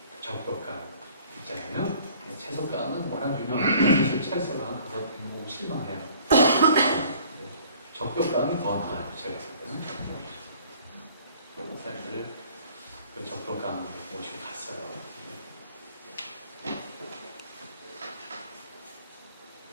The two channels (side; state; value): both; inverted; correlation -0.54